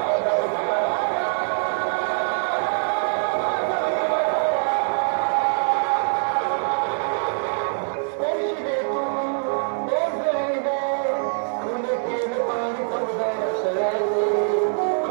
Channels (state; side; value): silent; left; 63 dB below the other